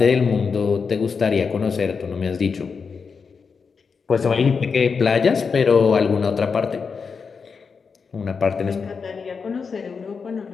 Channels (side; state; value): right; quieter; 5.5 dB